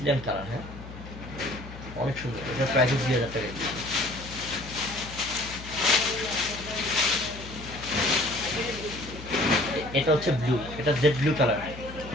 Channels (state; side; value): noise; left; hum, 13 dB below the sound